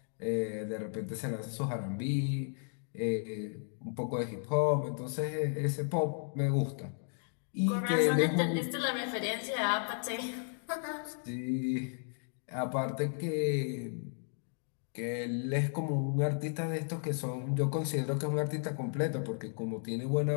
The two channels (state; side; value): silent; right; 55 dB below the other